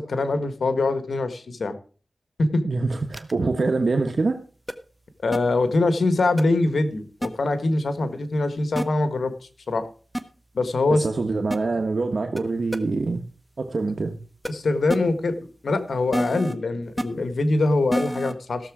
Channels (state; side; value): normal; both; correlation 0.92